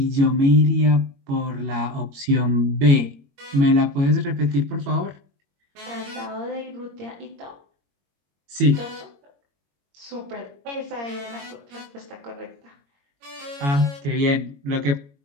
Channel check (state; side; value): late; left; 21 ms